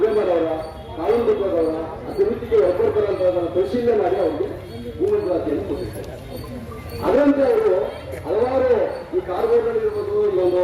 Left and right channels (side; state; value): both; identical; correlation 1.00